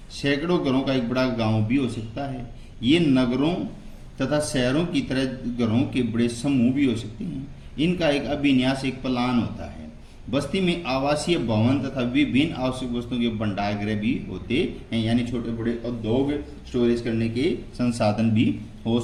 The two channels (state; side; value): identical; both; correlation 1.00